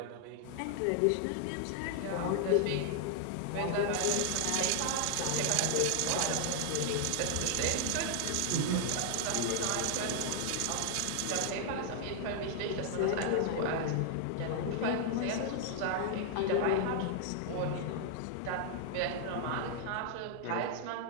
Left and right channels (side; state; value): both; different; correlation 0.00